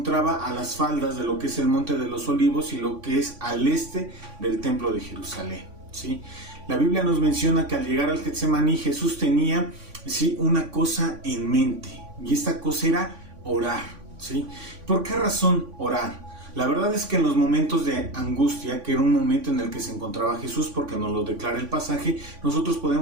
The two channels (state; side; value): late; left; 3.5 ms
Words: a las faldas de lo que es el Monte de los Olivos y lo que es al este del Templo de Jerusalén, ¿sí? La Biblia nos menciona que al llegar al Getsemaní Jesús tenía, ¿sí?, una cosa en mente, y esta cosa era orar, ¿sí? ¿Por qué razón orar? La verdad es que en los momentos de angustia, que era un momento en el que se encontraba Jesús, porque nos lo declara el pasaje, nosotros